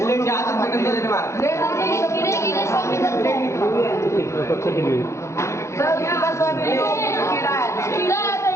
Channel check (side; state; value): right; late; 0.14 ms